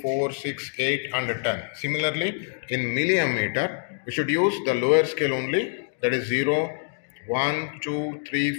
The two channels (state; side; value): silent; right; digital silence